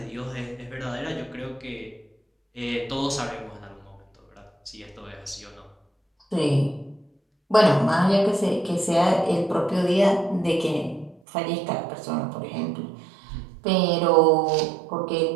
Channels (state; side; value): drops out; left; at 11.2 s